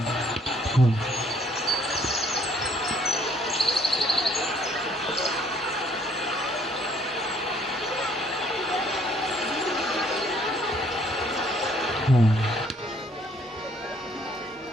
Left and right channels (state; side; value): normal; both; correlation 0.62